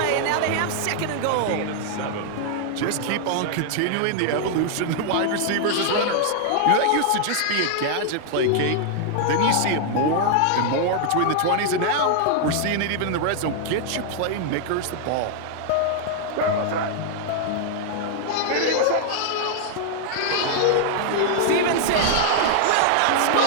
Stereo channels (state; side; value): different; both; correlation -0.01